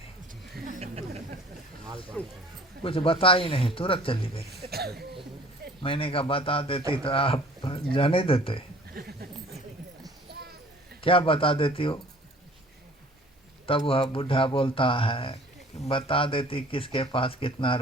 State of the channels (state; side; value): normal; both; correlation 0.50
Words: कुछ बता ही नहीं, तुरंत चली गई। मैंने कहा, बता देती तो आप जाने देते, क्या बता देती हो? तब वह बूढ़ा बोलता है, बता देती किसके पास कितना